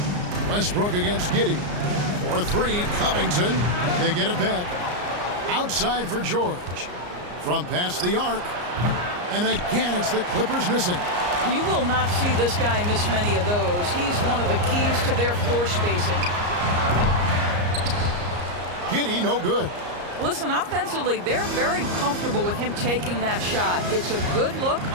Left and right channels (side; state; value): left; late; 34 ms